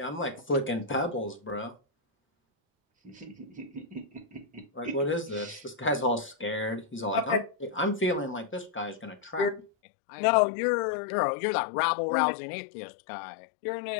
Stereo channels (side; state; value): right; drops out; at 9.7 s